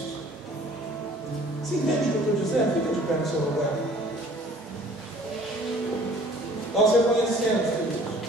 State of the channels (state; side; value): normal; both; correlation 0.52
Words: Você entende o que eu estou dizendo? Fica de pé no seu lugar. Nós reconhecemos, queridos.